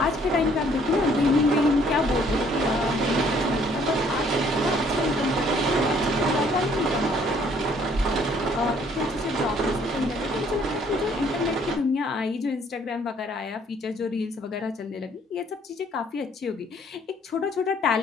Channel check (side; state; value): both; normal; correlation 0.62